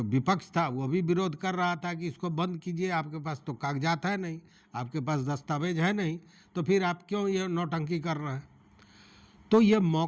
विपक्ष था वो भी विरोध कर रहा था कि इसको बंद कीजिए, आपके पास तो कागजात है नहीं, आपके पास दस्तावेज है नहीं, तो फिर आप क्यों ये नौटंकी कर रहे हैं। तो ये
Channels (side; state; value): both; identical; correlation 1.00